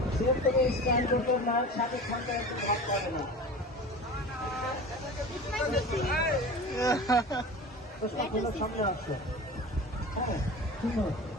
তুমি স্ক্যান করতে না, সাথে খানটা একটু ভাগ করে না। সামনে আসছে।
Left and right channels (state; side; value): normal; both; correlation 0.35